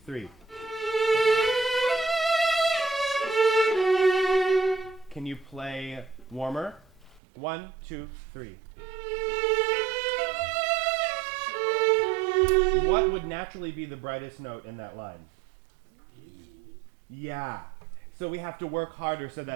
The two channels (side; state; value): left; drops out; at 7.2 s